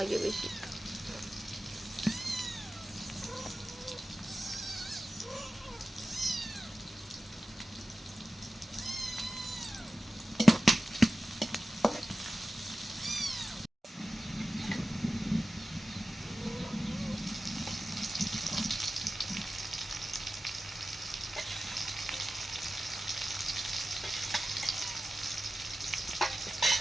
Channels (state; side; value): normal; both; correlation 0.95